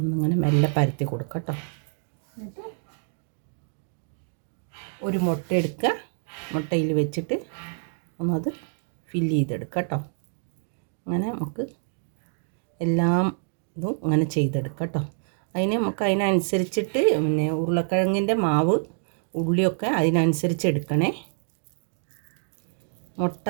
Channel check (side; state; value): left; silent; digital silence